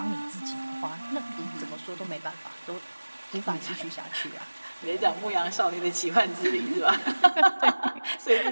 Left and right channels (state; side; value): inverted; both; correlation -1.00